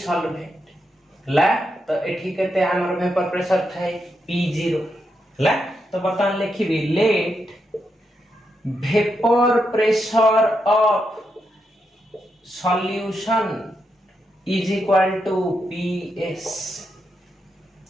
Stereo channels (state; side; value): normal; both; correlation 0.83